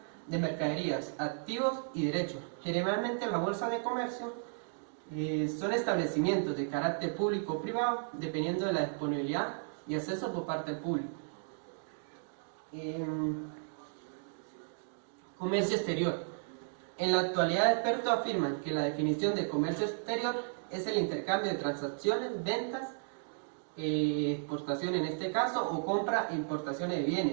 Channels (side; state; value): left; silent; digital silence